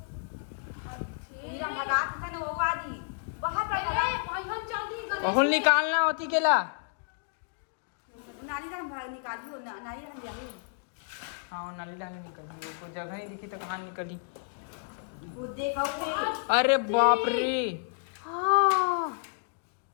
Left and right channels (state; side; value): silent; right; digital silence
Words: बहुल निकालना होती केला। हाँ नाली डाली निकली, वो कोई जगह नहीं दिखी तो कहाँ निकली। अरे बाप रे,